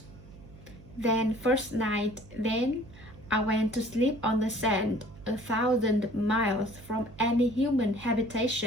I went to sleep on the sand, 1,000 miles from any human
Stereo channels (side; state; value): right; noise; hum, 19 dB below the sound